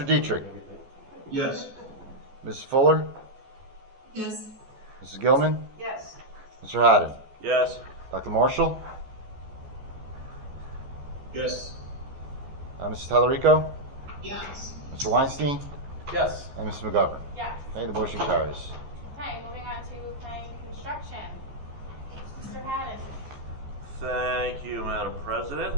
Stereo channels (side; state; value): left; late; 14 ms